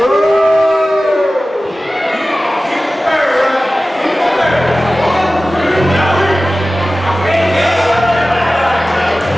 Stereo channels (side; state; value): both; normal; correlation 0.96